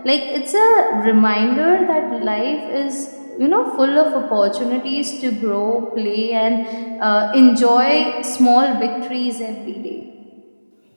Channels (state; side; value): inverted; both; correlation -1.00